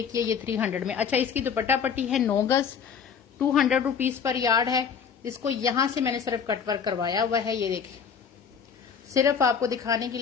की है, ये 300 में। अच्छा, इसकी दुपट्टा पट्टी है 9 गज, 200 रुपीज पर यार्ड है। इसको यहां से मैंने सिर्फ कटवर्क करवाया हुआ है। ये देखिए, सिर्फ आपको दिखाने के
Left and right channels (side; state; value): right; quieter; 6.8 dB